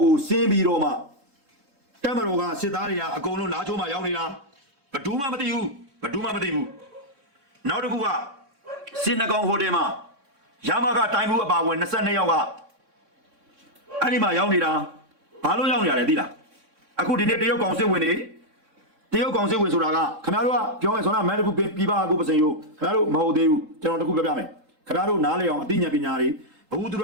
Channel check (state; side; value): late; left; 3.6 ms